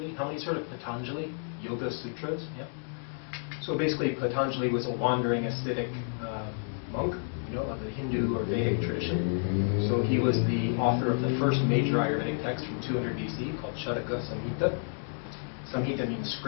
How many heard of Patanjali? Yoga Sutras? Yeah. So basically Patanjali was a wandering ascetic monk, of the Hindu or Vedic tradition. So he was the author of the first major Ayurvedic text from 200 BC called Charaka Samhita. Samhita means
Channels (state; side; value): silent; right; 58 dB below the other